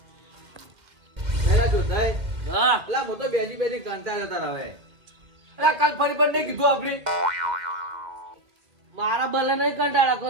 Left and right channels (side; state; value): left; late; 2.1 ms